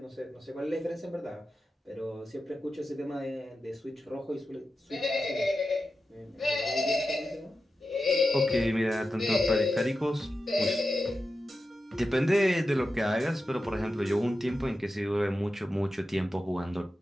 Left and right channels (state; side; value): normal; both; correlation 0.91